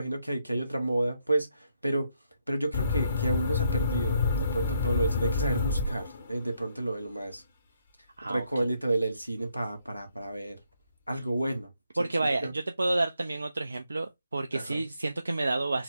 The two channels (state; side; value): inverted; both; correlation -0.76